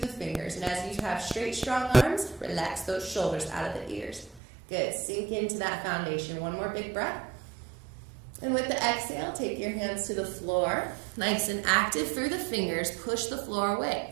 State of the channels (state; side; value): drops out; left; at 4.4 s